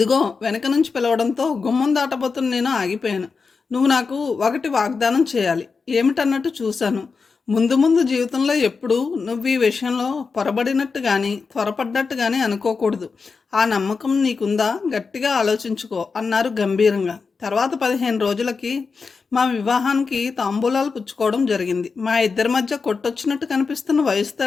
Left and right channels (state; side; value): quieter; right; 4.9 dB